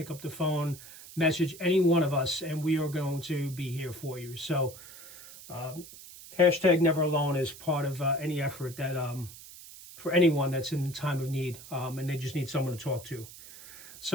up the phone, message any one of us, and we are going to be here for you. So hashtag never alone is part of any effort that for anyone that's in time of need and they just need someone to talk to.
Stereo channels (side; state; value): right; noise; hiss, 17 dB below the sound